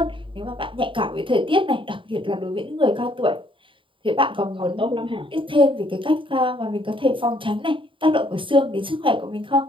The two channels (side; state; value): left; late; 0.25 ms